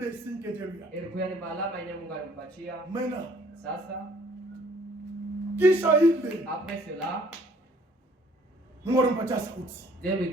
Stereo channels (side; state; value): both; normal; correlation 0.59